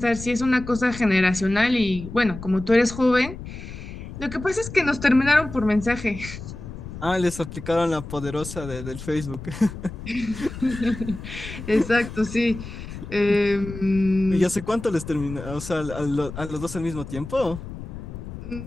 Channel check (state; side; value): noise; left; rumble, 11 dB below the sound